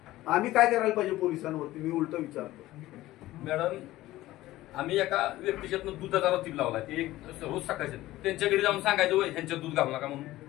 आम्ही काय करायला पाहिजे पोलिसांवरती? मी उलट विचारतो. मॅडम आम्ही एका व्यक्तीच्यातनं दुधाचा रतीब लावला. ते एक रोज सकाळचे त्यांच्याकडे जाऊन सांगायचं वय ह्यांच्यात दूध घालू नका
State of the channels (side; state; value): right; quieter; 16.3 dB